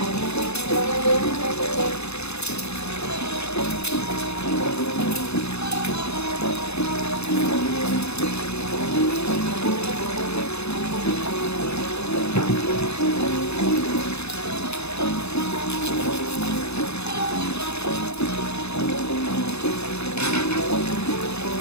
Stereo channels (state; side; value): late; right; 0.80 ms